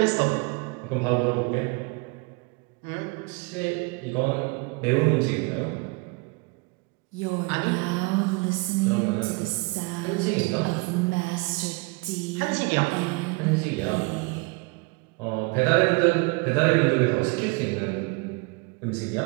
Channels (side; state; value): left; quieter; 28.2 dB